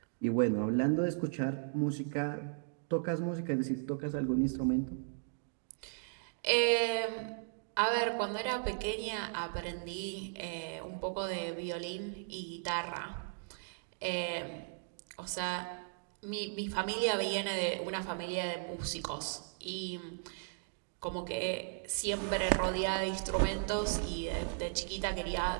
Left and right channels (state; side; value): silent; left; digital silence